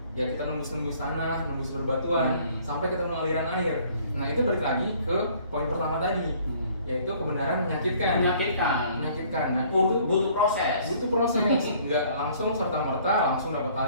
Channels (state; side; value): inverted; both; correlation -0.58